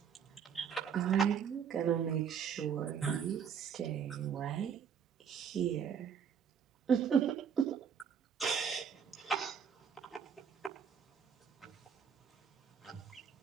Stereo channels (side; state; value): left; quieter; 7.4 dB